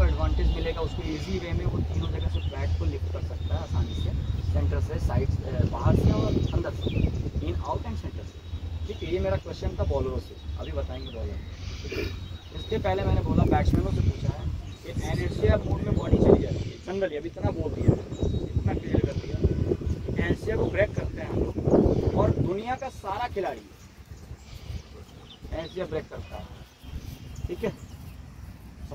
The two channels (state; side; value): identical; both; correlation 1.00